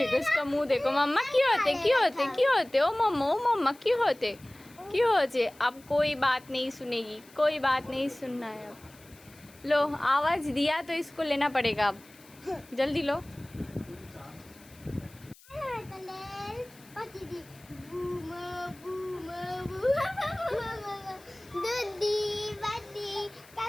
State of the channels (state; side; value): noise; left; hiss, 25 dB below the sound